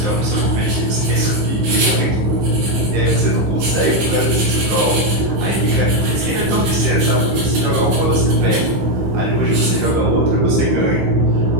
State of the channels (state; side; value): late; left; 15 ms